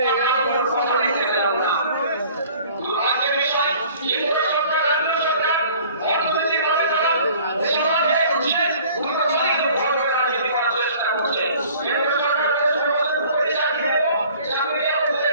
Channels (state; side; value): inverted; both; correlation -0.51